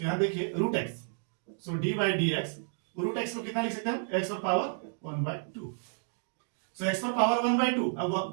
यहां देखिए root x, so d by d x, root x को कितना लिख सकते हैं, एक्स पर पावर 1/2। सो एक्स पर पावर 1/2। अब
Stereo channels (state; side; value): silent; left; 57 dB below the other